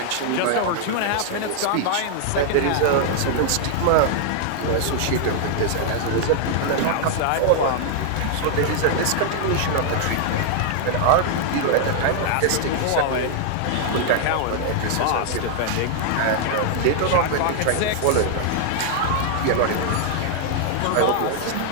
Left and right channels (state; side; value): different; both; correlation 0.00